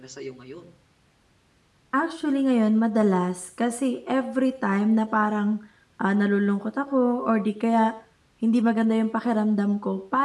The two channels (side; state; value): both; identical; correlation 1.00